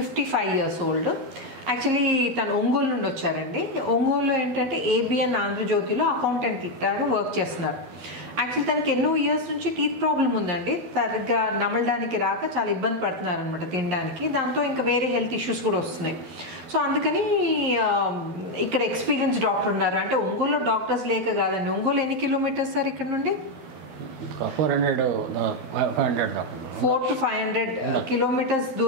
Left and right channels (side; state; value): left; late; 12 ms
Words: years ఓల్డ్. యాక్చువల్లీ తను ఒంగోలు నుండి వచ్చారండి. ఒంగోలులో ఏంటంటే ఏబిఎన్ ఆంధ్రజ్యోతిలో అకౌంటెంట్ లాగా వర్క్ చేస్తున్నారు. యాక్చువల్లీ తనకి ఎన్నో ఇయర్స్ నుంచి టీత్ ప్రాబ్లం ఉందండి. సరిగ్గా నమలడానికి రాక చాలా ఇబ్బంది పడుతున్నారు అనమాట తినడానికి. దాంతో ఇంకా వేరే హెల్త్ ఇష్యూస్ కూడా వస్తున్నాయి. సో అందుకని ఇక్కడ ఎక్స్పీరియన్స్ డాక్టర్ ఉన్నారు. అంటే ఒంగోలులో డాక్టర్స్ లేక కాదండి. ఒంగోలు ఎన్ని కిలోమీటర్స్ సార్ ఇక్కడ నుండి? 400 to 500 కిలోమీటర్స్